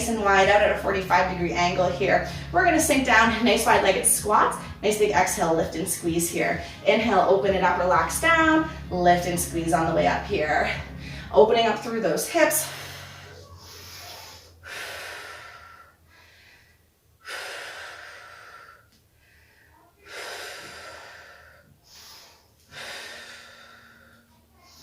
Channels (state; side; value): identical; both; correlation 1.00